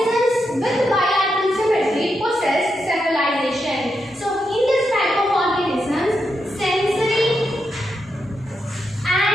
with bilateral symmetry possess cephalization. So, in this type of organisms,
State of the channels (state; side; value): normal; both; correlation 0.84